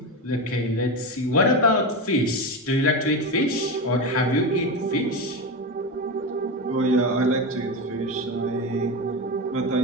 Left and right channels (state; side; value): normal; both; correlation 0.18